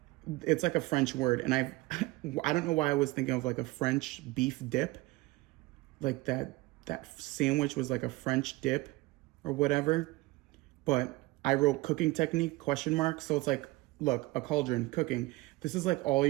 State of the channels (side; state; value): left; quieter; 20.6 dB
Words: like a French word. And I don't know why I was thinking of like a French beef dip, like that sandwich was like a French dip or whatever. But I wrote cooking technique ? So it's like, look, a cauldron, cooking. This is like all